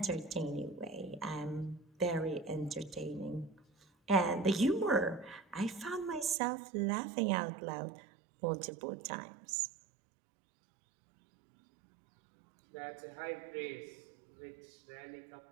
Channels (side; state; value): left; drops out; at 6.4 s